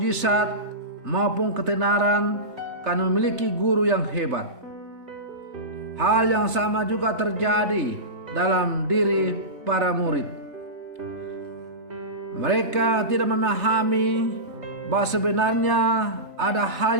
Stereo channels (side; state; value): left; late; 3.3 ms